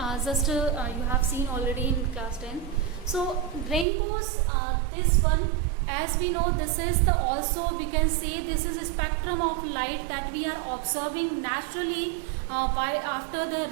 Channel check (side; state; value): left; drops out; at 3.9 s